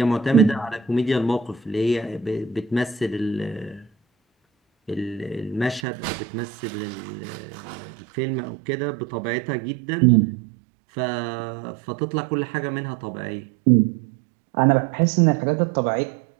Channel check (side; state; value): left; drops out; at 5.9 s